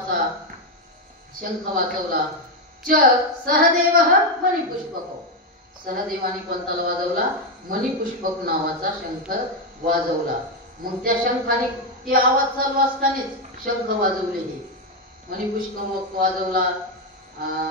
शंख वाजवला. च सहदेव मणिपुष्पक, सहदेवाने कोणता वाजवला, मणिपुष्पक नावाचा शंख वाजवला. मग त्या शंखाने ते आवाज चालू असतानाच शंख वाजवले. हे मणिपुष्पक वाजवला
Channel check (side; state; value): both; normal; correlation 0.06